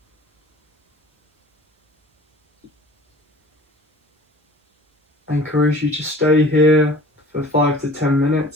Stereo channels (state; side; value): normal; both; correlation 0.45